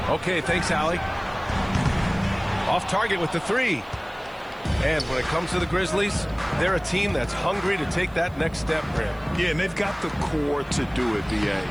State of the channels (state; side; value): noise; right; hiss, 30 dB below the sound